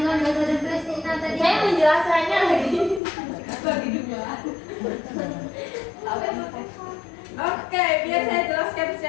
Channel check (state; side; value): drops out; right; at 3.0 s